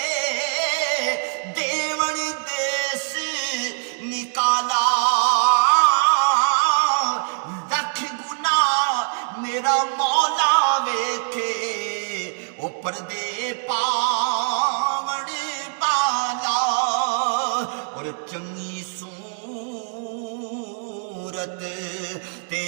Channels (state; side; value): silent; left; 58 dB below the other